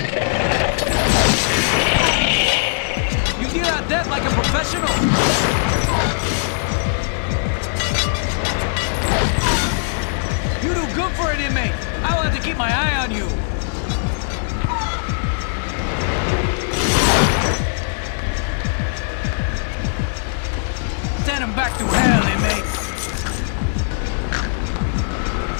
You deal out death like a professional. You do good for an inmate. I will have to keep my eye on you. Send him back to hell, inmate.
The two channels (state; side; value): silent; right; digital silence